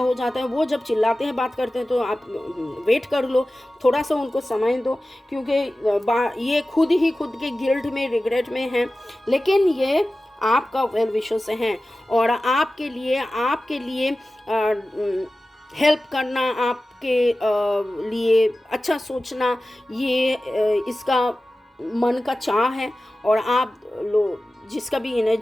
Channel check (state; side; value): normal; both; correlation 0.95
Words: जाता है। वो जब चिल्लाते हैं बात करते हैं तो आप वेट कर लो, थोड़ा सा उनको समय दो, क्योंकि ये खुद ही खुद के गिल्ट में, रिग्रेट में हैं, लेकिन ये आपका वेल विशेस हैं और आपके लिए हेल्प करना, आपके लिए अच्छा सोचना, ये इसका मन का चाह है। और आप लोग जिसका भी